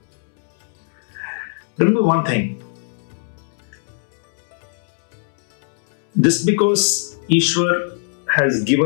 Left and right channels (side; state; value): right; silent; 63 dB below the other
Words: Remember one thing. Just because Ishwar has